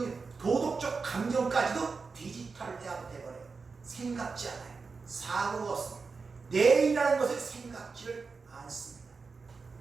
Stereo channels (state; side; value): quieter; left; 4.7 dB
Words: 일, 도덕적 감정까지도 디지털 대화가 돼버려요. 생각지 않아요. 사고가 없습니다. 내일이라는 것을 생각지를 않습니다.